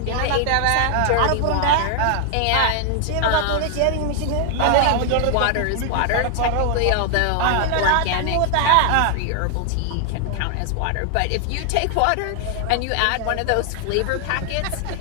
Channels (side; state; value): both; different; correlation 0.00